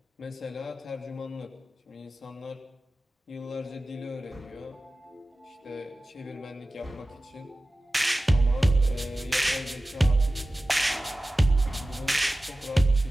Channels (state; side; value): normal; both; correlation 0.96